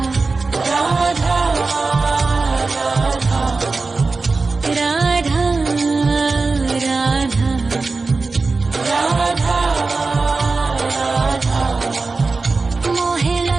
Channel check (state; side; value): quieter; left; 3.9 dB